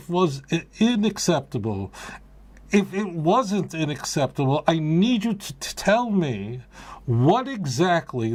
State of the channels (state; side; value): identical; both; correlation 1.00